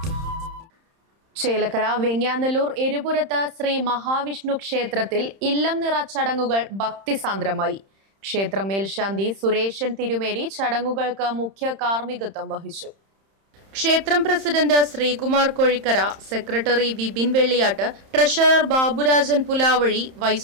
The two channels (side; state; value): left; late; 31 ms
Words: ചേലക്കര വെങ്ങ്യാനല്ലൂർ എരുപുരത്ത് ശ്രീ മഹാവിഷ്ണു ക്ഷേത്രത്തിൽ ഇല്ലം നിറ ചടങ്ങുകൾ ഭക്തിസാന്ദ്രമായി. ക്ഷേത്ര മേൽശാന്തി സുരേഷൻ തിരുമേനി ചടങ്ങുകൾക്ക് മുഖ്യ കാർമ്മികത്വം വഹിച്ചു. ക്ഷേത്രം president Sreekumar Kozhikkara, secretary Vipin Velliyatt, treasurer Baburajan Pulavazhi,